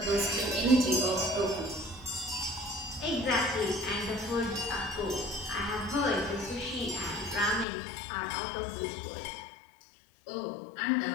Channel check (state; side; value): drops out; right; at 7.7 s